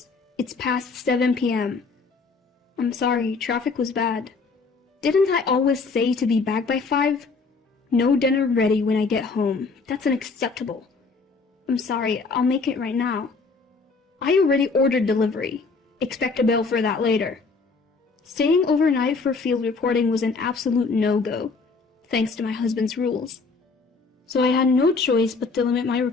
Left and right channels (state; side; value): quieter; right; 4.3 dB